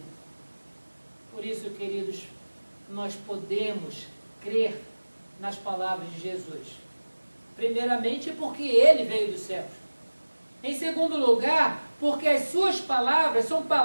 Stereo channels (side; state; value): both; inverted; correlation -1.00